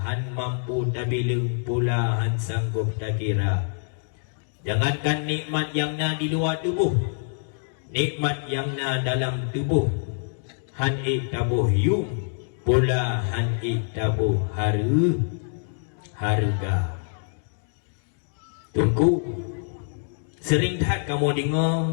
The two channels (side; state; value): right; silent; digital silence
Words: han mampu tabilung pula han sanggup tak kira. Jangankan nikmat yang na di luar tubuh, nikmat yang na dalam tubuh, han'ik tabuh yung pula han'ik tabuh harga. Tunggu, sering tak kamu